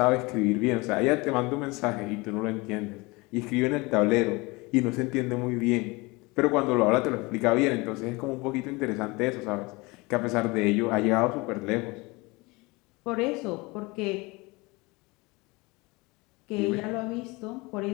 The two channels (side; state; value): right; quieter; 24.6 dB